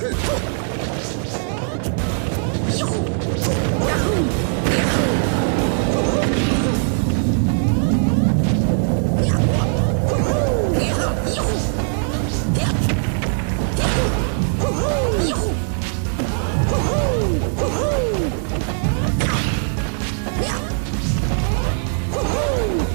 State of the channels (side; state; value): left; silent; 66 dB below the other